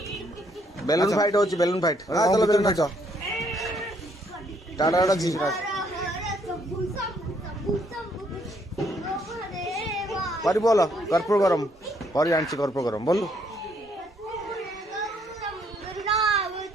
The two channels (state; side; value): normal; both; correlation 0.69